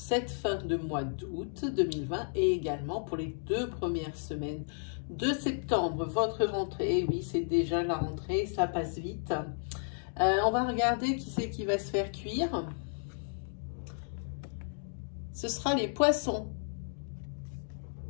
fin de mois d'août 2020 et également pour les 2 premières semaines de septembre. Votre rentrée, oui c'est déjà la rentrée, ça passe vite. On va regarder qui c'est qui va se faire cuire. Ce sera les poissons.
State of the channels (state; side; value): silent; right; digital silence